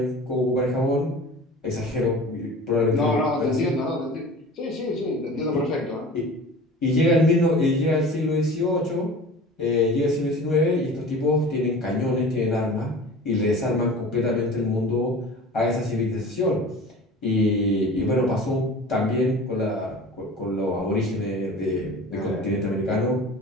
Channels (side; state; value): both; normal; correlation 0.39